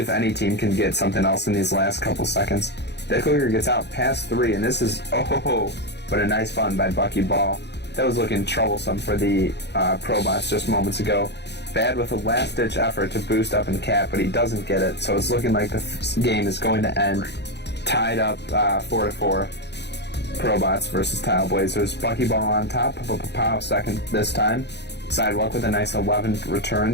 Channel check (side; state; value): right; late; 0.50 ms